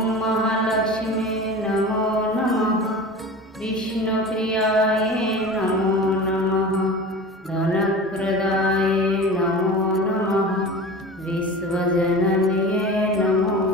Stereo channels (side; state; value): both; normal; correlation 0.35